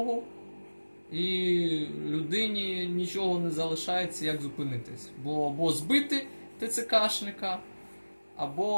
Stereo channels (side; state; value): both; inverted; correlation -1.00